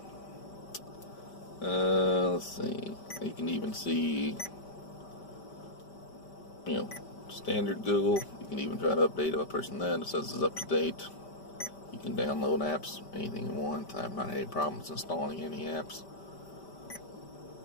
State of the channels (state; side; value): late; right; 5.1 ms